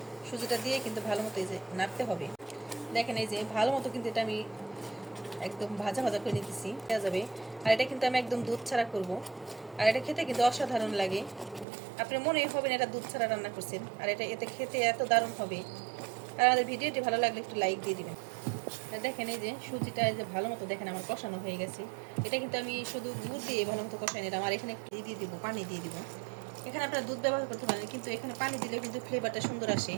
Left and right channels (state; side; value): drops out; left; at 11.7 s